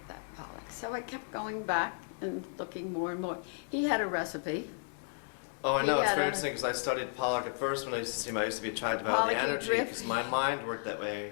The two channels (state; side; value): silent; right; digital silence